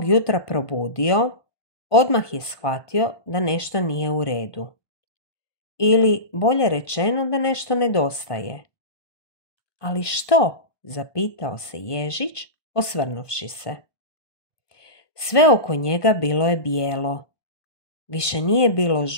jutra probudio, odmah je shvatio da nešto nije u redu. Ili, bolje rečeno, da nešto nedostaje. Ali što? Zapitao se Ježić, osvrnuvši se. Sve oko njega bilo je bijelo. Više nije bilo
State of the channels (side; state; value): right; late; 1.2 ms